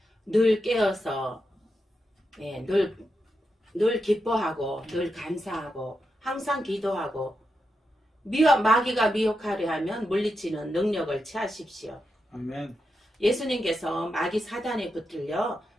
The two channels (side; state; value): both; normal; correlation 0.86